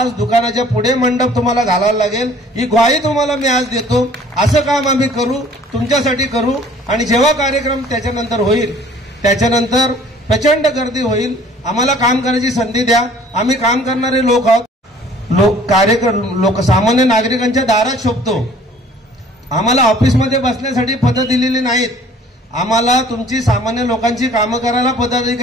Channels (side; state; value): both; normal; correlation 0.53